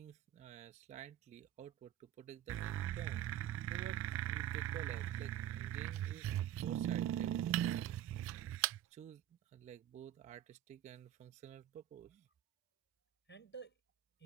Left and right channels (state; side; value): quieter; left; 11.9 dB